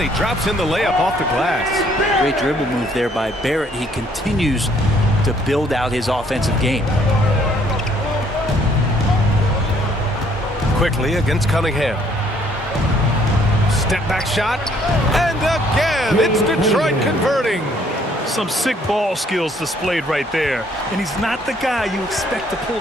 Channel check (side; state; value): both; normal; correlation 0.64